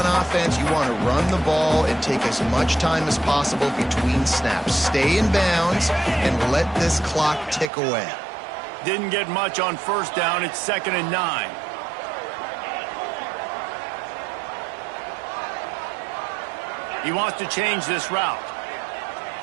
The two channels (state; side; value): drops out; left; at 7.7 s